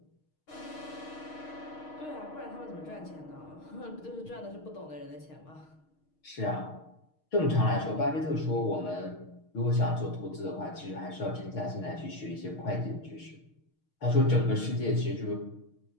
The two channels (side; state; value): right; late; 6.5 ms